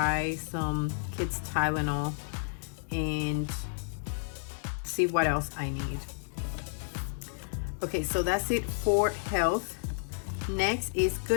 some kids Tylenol and see what else I need. Okay, so that's it for health. Next is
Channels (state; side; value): silent; right; digital silence